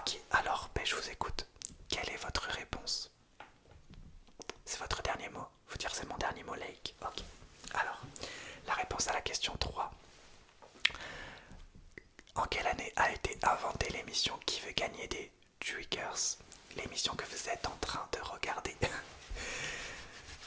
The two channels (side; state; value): both; identical; correlation 1.00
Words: alors je vous écoute. Quelle est votre réponse? C'est votre dernier mot? Faut dire c'est mon dernier mot, Lake. Ok. Alors,